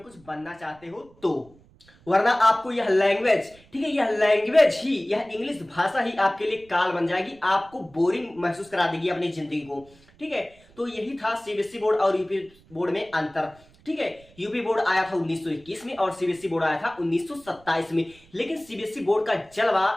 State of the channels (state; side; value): noise; right; rumble, 27 dB below the sound